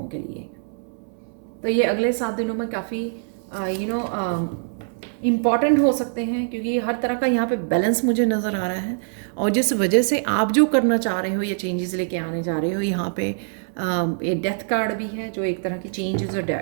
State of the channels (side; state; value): left; silent; 63 dB below the other